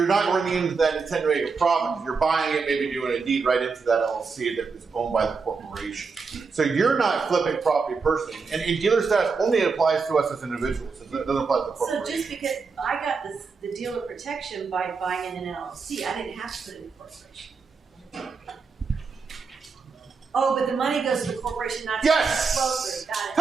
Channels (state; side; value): quieter; left; 4.9 dB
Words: not running into that intent to make a profit. You're buying it, maybe doing a deed right into that LLC that is owned by the corporation. So you're not flipping property personally. And dealer status only applies to us as individuals. It doesn't apply to the corporation. So just because I got the dealer protection by buying in an LLC, I didn't have to put it in the corporation. Oh, but the money goes to the corporation, not to Yes! the closer. Got it.